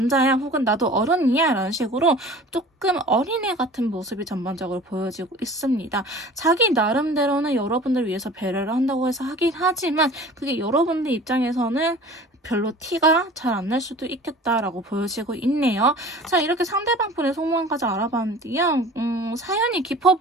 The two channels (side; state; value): both; normal; correlation 0.43